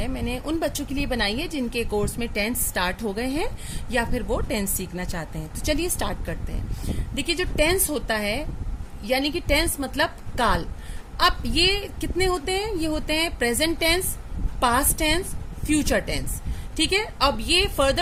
मैंने उन बच्चों के लिए बनाई है जिनके कोर्स में टेंस स्टार्ट हो गए हैं या फिर वो टेंस सीखना चाहते हैं। तो चलिए स्टार्ट करते हैं। देखिए, जो टेंस होता है यानी कि टेंस मतलब काल। अब ये कितने होते हैं? ये होते हैं present tense, past tense, future tense. ठीक है। अब ये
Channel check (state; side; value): identical; both; correlation 1.00